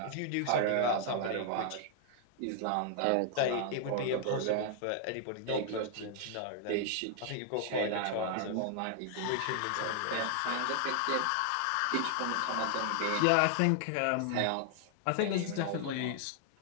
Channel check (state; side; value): different; both; correlation 0.00